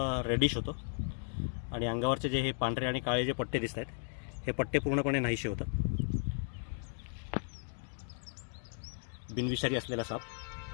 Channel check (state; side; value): silent; right; digital silence